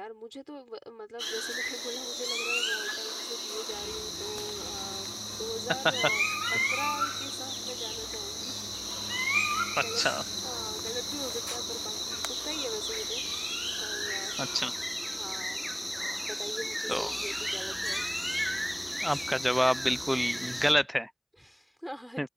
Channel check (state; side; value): identical; both; correlation 1.00